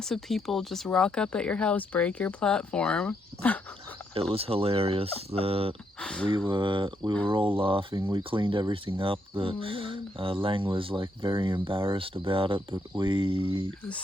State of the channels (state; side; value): normal; both; correlation 0.76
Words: people just rock up at your house, break your platform. It was hilarious. We were all laughing. We cleaned everything up. Lang was like very embarrassed about it, but it was